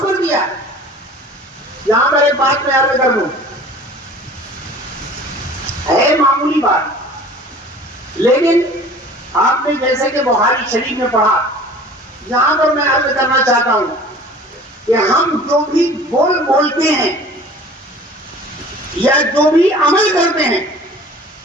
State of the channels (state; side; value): normal; both; correlation 0.45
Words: کر دیا. یہاں پر ایک بات میں عرض کر دوں، ہے معمولی بات، لیکن آپ نے جیسے کہ بخاری شریف میں پڑھا، یہاں پر میں عرض کرنا چاہتا ہوں کہ ہم جو بھی بولتے ہیں یا جو بھی عمل کرتے ہیں